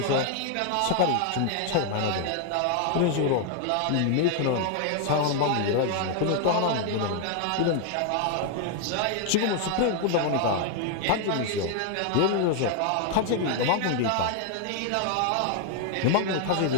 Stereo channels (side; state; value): both; different; correlation 0.00